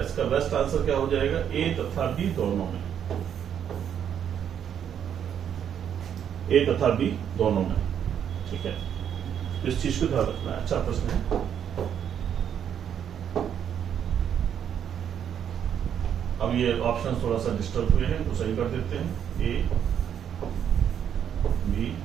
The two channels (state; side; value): quieter; left; 8.9 dB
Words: इसका बेस्ट आंसर क्या हो जाएगा, ए तथा बी दोनों में, ए तथा बी दोनों में। ठीक है, इस चीज को ध्यान रखना है। अच्छा प्रश्न है। अब ये ऑप्शन थोड़ा सा डिस्टर्ब हुए हैं, तो सही कर देते हैं, ए बी